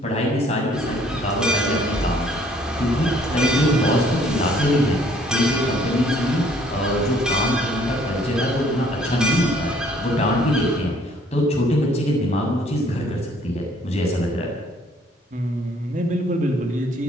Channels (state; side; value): normal; both; correlation 0.60